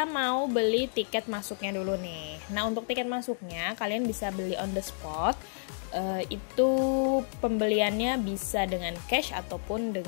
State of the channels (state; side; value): silent; right; digital silence